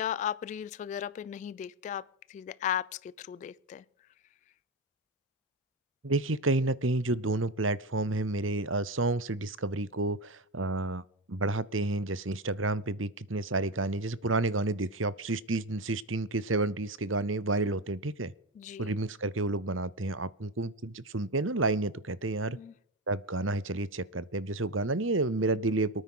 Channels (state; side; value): normal; both; correlation 0.16